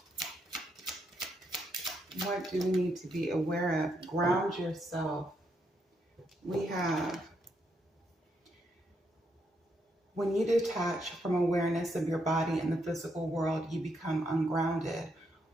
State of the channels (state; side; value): normal; both; correlation 0.78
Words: What do we need to be aware of? Ground yourself. We have, when you detach from awareness of your body in the physical world, you become ungrounded.